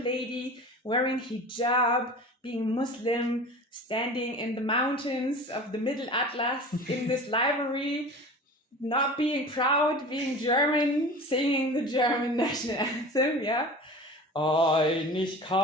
lady wearing hijab, being Muslim, standing in the mountains of the Middle Atlas in this library, not being proud, being German, singing the German national anthem, yeah.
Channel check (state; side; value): normal; both; correlation 0.37